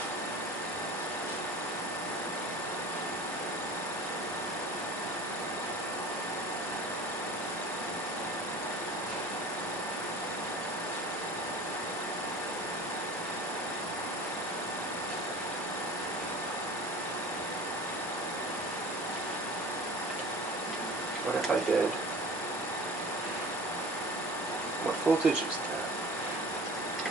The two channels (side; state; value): both; normal; correlation 0.39